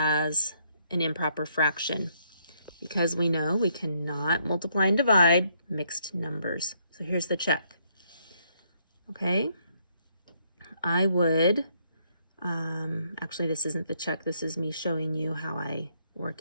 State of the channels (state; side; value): inverted; both; correlation -0.72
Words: an improper fraction, because we know we cannot multiply and divide mixed numbers. So here's the check. Okay, I would, actually this isn't the check, this is me showing you how I